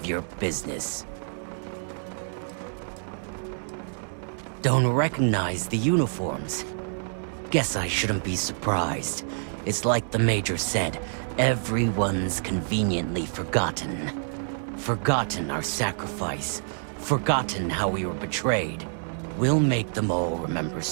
your business. Don't recognize the uniforms? Guess I shouldn't be surprised. It's like the Major said, everyone's conveniently forgotten. Forgotten our sacrifice. Forgotten how we were betrayed. We'll make them all remember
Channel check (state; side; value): silent; left; digital silence